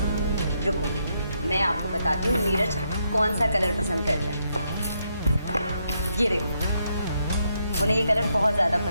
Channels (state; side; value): inverted; both; correlation -0.78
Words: रुको मैं आपको बताती हूँ नीरज कौन सा कलर पसंद करता है। ये देखो, उन्हें ये कलर बहुत ज़्यादा